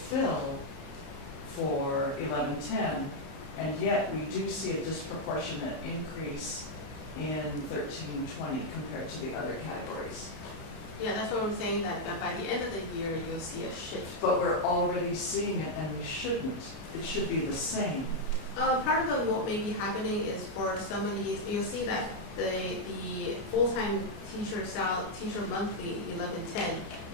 for 1110, and yet we do see a disproportionate increase in 1320 compared to the other categories. Yeah, that's what I'm saying, that by the end of the year, you'll see a shift. But we're already seeing it, and we shouldn't. It should be the same. Part of what may be happening is for some of these, you'll see that the full-time teacher monthly 1110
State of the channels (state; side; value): late; right; 31 ms